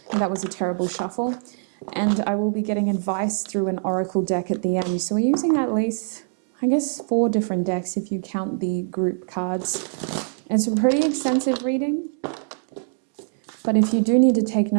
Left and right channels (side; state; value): left; silent; digital silence